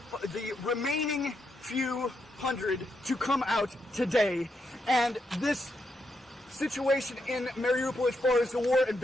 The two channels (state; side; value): normal; both; correlation 0.81